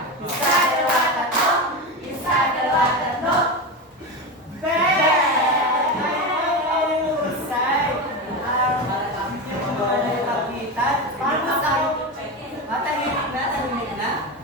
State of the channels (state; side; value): normal; both; correlation 0.19